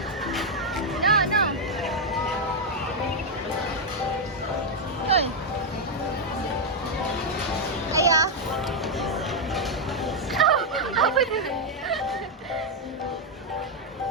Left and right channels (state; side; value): normal; both; correlation 0.01